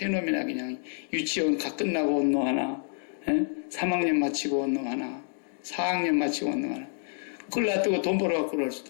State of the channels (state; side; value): silent; right; digital silence